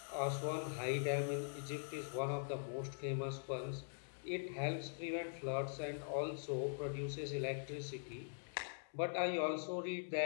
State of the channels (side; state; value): right; silent; digital silence